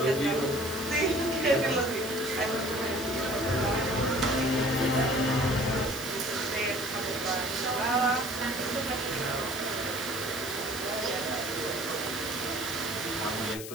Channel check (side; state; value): left; noise; hiss, 10 dB below the sound